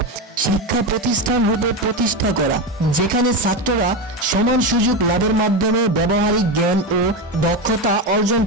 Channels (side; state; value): both; normal; correlation 0.16